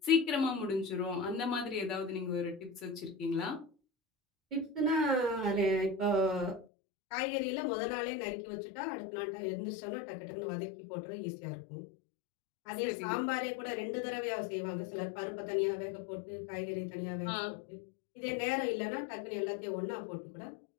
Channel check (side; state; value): right; drops out; at 6.7 s